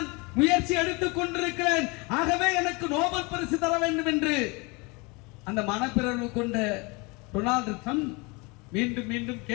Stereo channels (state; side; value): quieter; right; 27.7 dB